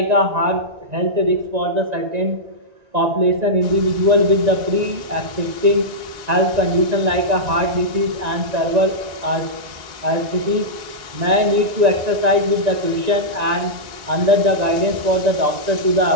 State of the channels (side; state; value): left; late; 1.9 ms